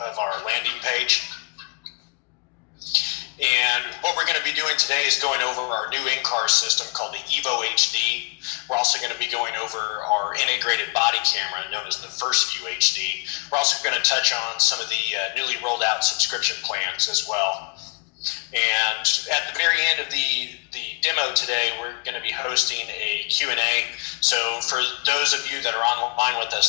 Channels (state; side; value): quieter; right; 33.1 dB